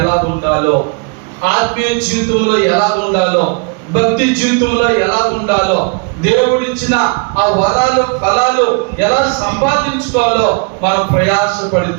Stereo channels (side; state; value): left; quieter; 34.1 dB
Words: ఎలా ఉండాలో, ఆత్మీయ జీవితంలో ఎలా ఉండాలో, భక్తి జీవితంలో ఎలా ఉండాలో, దేవుడిచ్చిన ఆ వరాలు ఫలాలు ఎలా సంపాదించుకోవాలో మనం